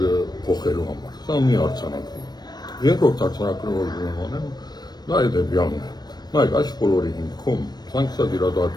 փոխելու համար։ Սա մի արձանագրում։ Երկրորդ արձանագրումը, որ ուզում եմ անեմ, դա հետևյալն է։ Նայեք, այս բոլորի հիմքում սանկցիա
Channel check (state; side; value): late; right; 0.19 ms